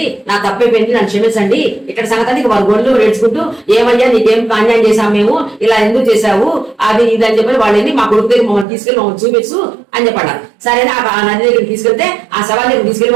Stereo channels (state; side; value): drops out; left; at 8.7 s